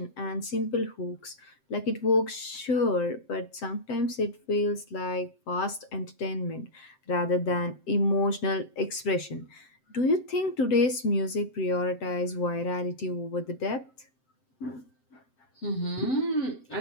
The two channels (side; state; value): right; late; 7.7 ms